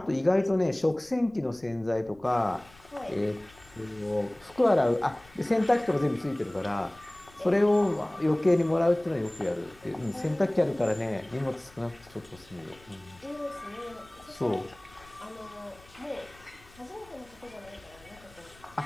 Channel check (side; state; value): left; noise; rumble, 25 dB below the sound